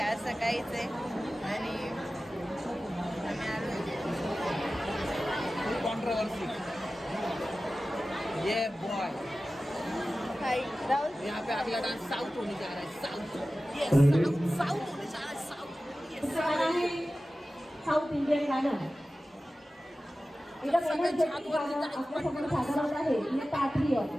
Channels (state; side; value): normal; both; correlation 0.95